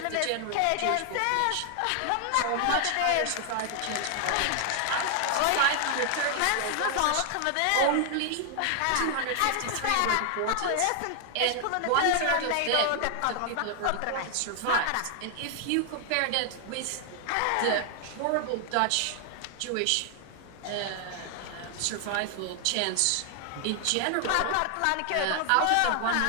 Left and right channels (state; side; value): different; both; correlation 0.00